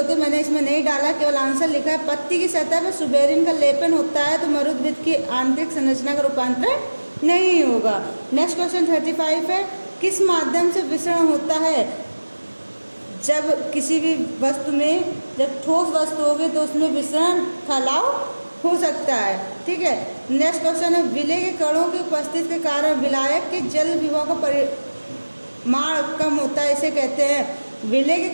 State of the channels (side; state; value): both; inverted; correlation -1.00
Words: मैंने इसमें नहीं डाला, केवल आंसर लिखा है। पत्ती की सतह पर सुबेरिन का लेपन होता है तो मरुद्भिद की आंतरिक संरचना का रूपांतरण नहीं होगा। नेक्स्ट क्वेश्चन 35 है, किस माध्यम से विसरण होता है? जब किसी भी वस्तु में जब ठोस वस्तु होगी तो उसमें विसरण फैलाव हो सकता है। ठीक है। नेक्स्ट क्वेश्चन है, विलय के कणों की उपस्थिति के कारण विलायक के जल विभव का परिमाण कम होता है, इसे कहते हैं। विलय के